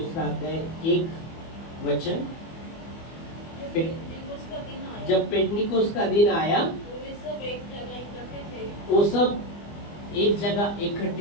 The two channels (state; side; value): late; right; 25 ms